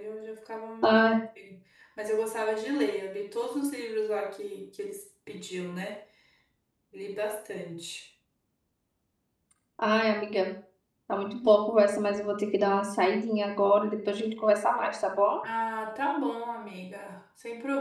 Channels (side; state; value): both; identical; correlation 1.00